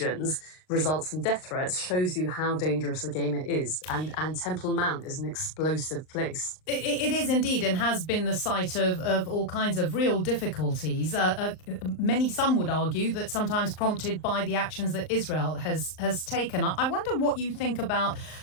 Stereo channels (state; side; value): late; right; 39 ms